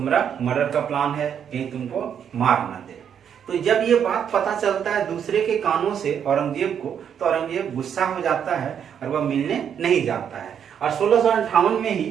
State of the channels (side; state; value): left; quieter; 8.3 dB